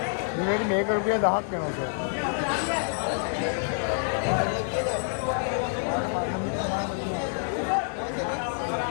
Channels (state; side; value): silent; right; digital silence